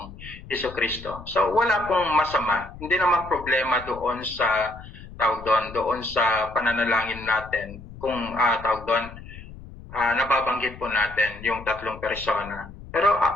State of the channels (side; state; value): left; noise; rumble, 16 dB below the sound